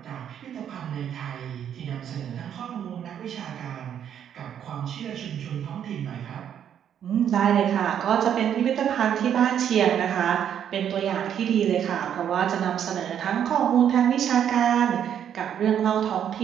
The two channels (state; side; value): quieter; left; 9.2 dB